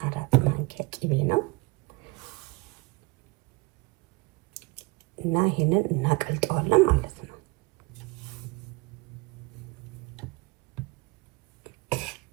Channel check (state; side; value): quieter; left; 24.9 dB